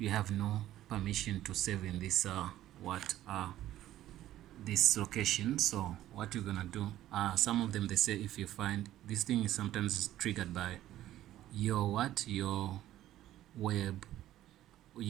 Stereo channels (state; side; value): quieter; left; 13.6 dB